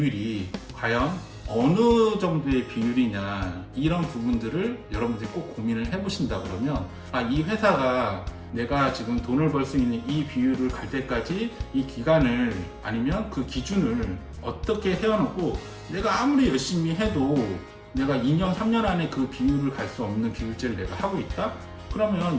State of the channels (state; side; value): identical; both; correlation 1.00